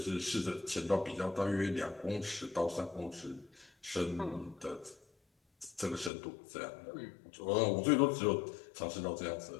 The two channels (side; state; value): right; drops out; at 6.1 s